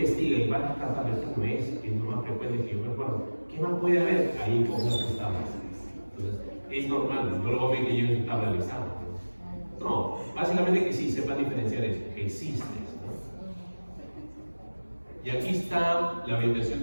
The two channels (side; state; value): both; inverted; correlation -1.00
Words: y va a tratar de esto no es lo más frecuente que yo me acuerdo. ¿Qué más puede haber? Hay cosas que están más. Entonces, es normal, no lo voy a ver que yo estaba realizando. No, básicamente que sí, sepan diferenciar eso, que existe. ¿No? Y aquí está la orientación